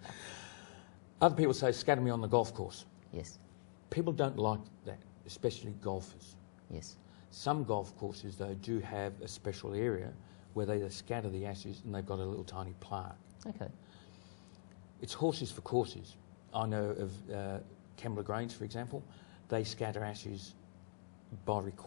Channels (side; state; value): right; silent; digital silence